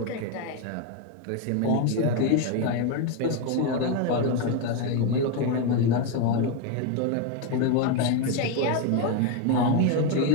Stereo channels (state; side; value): different; both; correlation 0.02